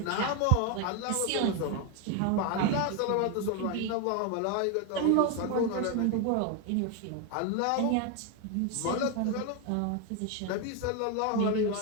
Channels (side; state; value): both; different; correlation 0.01